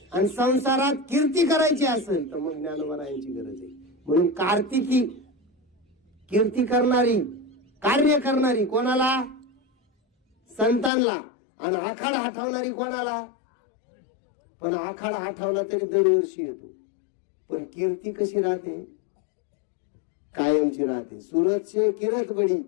आणि संसारात कीर्ती करायची असेल तर मग ज्ञानोबारायांची गरज आहे. म्हणून कार्तिकी कीर्ती करणारी, कार्य करणारी कोणाला? संतांना. आणि आखाड आठवणारी कोणाला? पण आखाड आठवला तरी दरवर्षी येतो, पण कीर्ती कशी राहते? कायमची राहते. सूरज से किरत बडी,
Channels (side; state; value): right; drops out; at 10.9 s